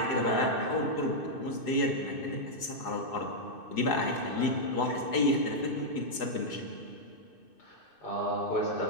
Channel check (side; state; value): right; late; 2.6 ms